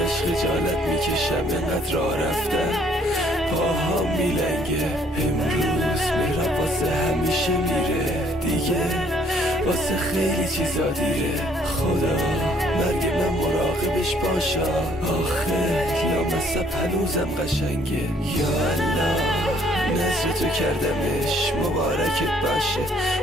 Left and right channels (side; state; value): both; normal; correlation 0.63